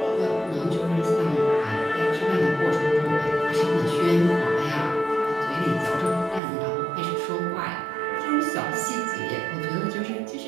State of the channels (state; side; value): drops out; left; at 6.4 s